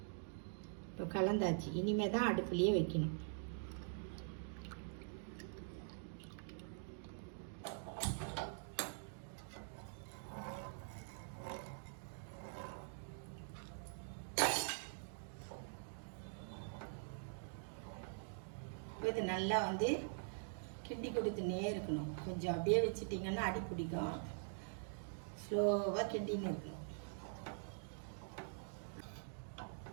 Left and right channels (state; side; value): silent; left; digital silence